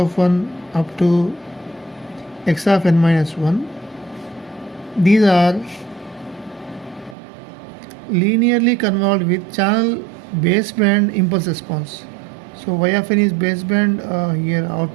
1 up to x of n minus 1. These are linearly convolved with channel baseband impulse response. So y of n is baseband here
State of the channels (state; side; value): drops out; left; at 7.2 s